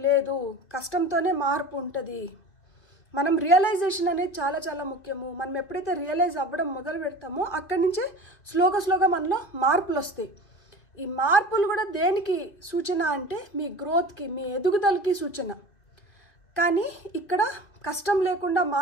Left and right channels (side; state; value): right; late; 2.3 ms